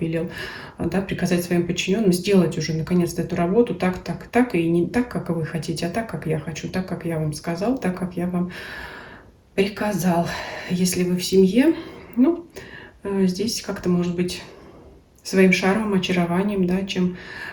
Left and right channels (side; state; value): both; identical; correlation 1.00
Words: да, приказать своим подчиненным сделать уже наконец-то эту работу так, так, так, и не так, как вы хотите, а так, как я хочу, так, как я вам сказал, так, как я вам приказал. Если вы в семье, ну, здесь как-то, может быть, своим шармом, очарованием, да, чем